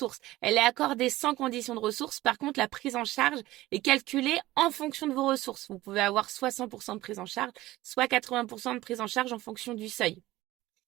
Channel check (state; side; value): quieter; left; 17.2 dB